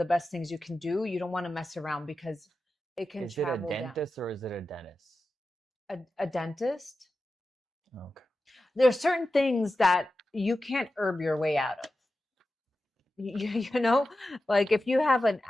best things you can do. You don't want to mess around, because it can Is it a travel down. dentist or is it a dentist? A dentist. Okay. There are certain things that you can't herb your way out of. You know, like if you have an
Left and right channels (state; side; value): normal; both; correlation 0.92